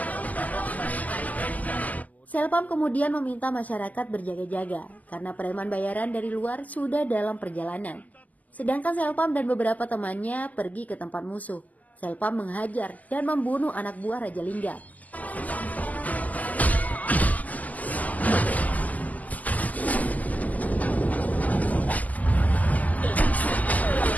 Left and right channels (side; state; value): right; late; 0.078 ms